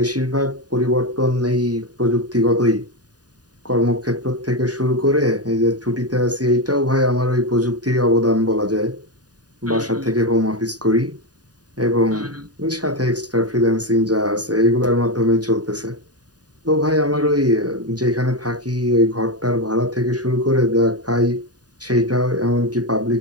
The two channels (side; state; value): left; late; 0.68 ms